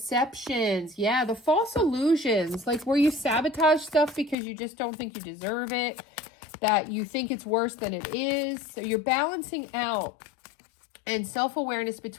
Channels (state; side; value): drops out; right; at 4.4 s